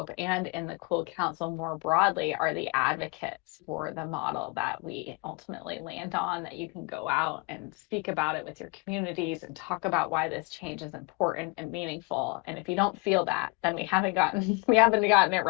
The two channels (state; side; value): quieter; right; 28.1 dB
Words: and in the Cool Council more broadly are the advocates for the model that we ultimately land on, that you can go out and speak about it with your communities and talk about why this change is important and meaningful. And if you don't feel that, then we haven't gotten it